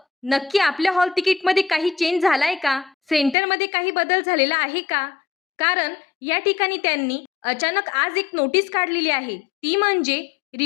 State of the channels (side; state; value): right; drops out; at 3.4 s